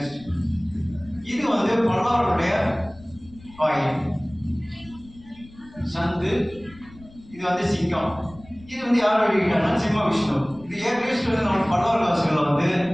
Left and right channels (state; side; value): noise; left; rumble, 22 dB below the sound